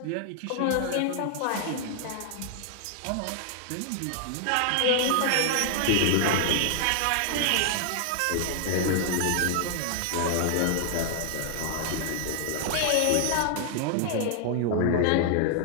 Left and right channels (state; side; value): different; both; correlation 0.00